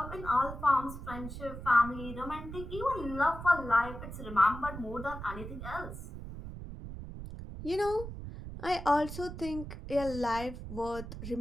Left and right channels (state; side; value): noise; right; rumble, 10 dB below the sound